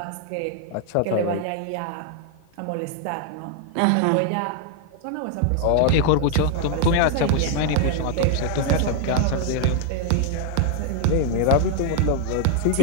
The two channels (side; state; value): both; different; correlation 0.00